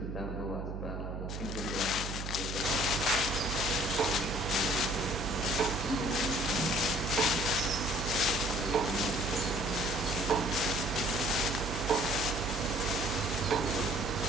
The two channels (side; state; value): right; noise; hum, 6 dB below the sound